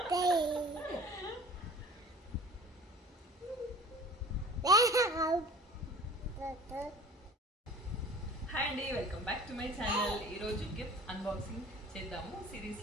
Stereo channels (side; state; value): both; normal; correlation 0.43